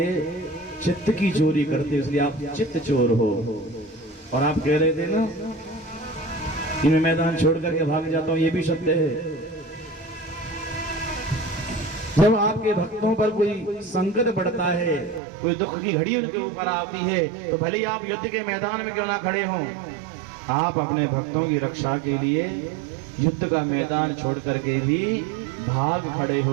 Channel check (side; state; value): left; drops out; at 15.2 s